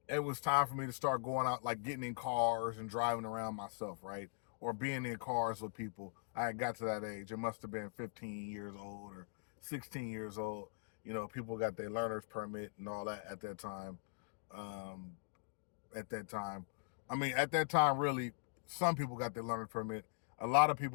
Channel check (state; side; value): silent; right; digital silence